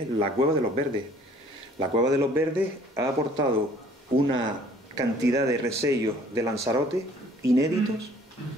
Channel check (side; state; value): both; normal; correlation 0.56